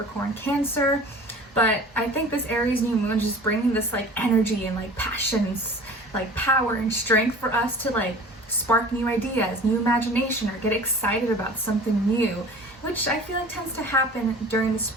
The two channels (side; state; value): both; normal; correlation 0.42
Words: Cancer. But I think this Aries new moon is just bringing this like energy and like passions, like power and strength for us to like spark new ideas, new imagination, or get excited about something new, which I feel like tends to happen during the